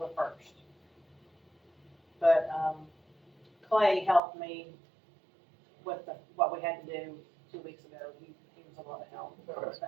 1st. But, Clay helped me with what we had to do 2 weeks ago. He was a lot of help with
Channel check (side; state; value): left; drops out; at 4.2 s